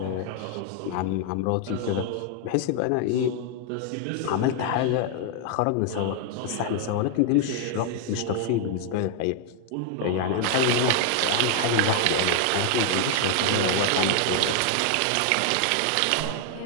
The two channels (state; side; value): different; both; correlation 0.00